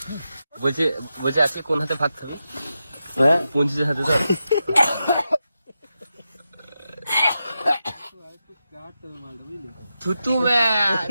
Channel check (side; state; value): both; inverted; correlation -0.89